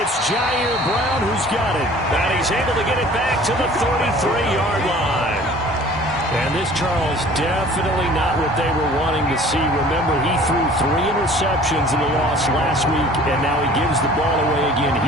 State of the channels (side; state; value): both; normal; correlation 0.48